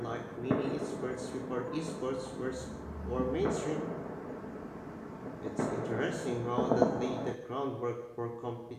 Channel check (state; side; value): identical; both; correlation 1.00